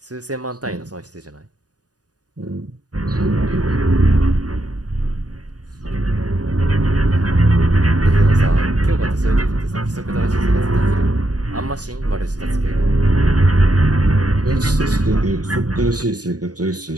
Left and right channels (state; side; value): late; left; 0.68 ms